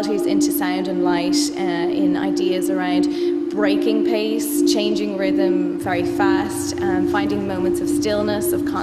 into sound and light, in ideas around breaking pace, changing rhythm very fast, finding moments of stillness, of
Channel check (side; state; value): both; identical; correlation 1.00